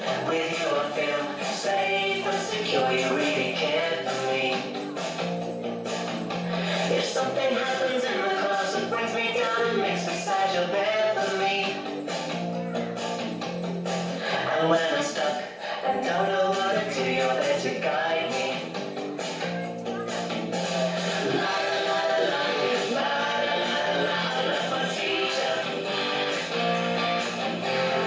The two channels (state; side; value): identical; both; correlation 1.00